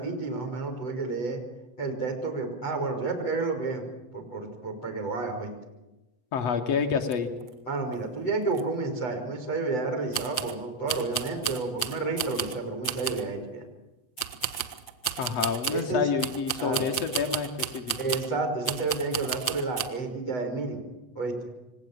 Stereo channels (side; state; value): right; late; 8.0 ms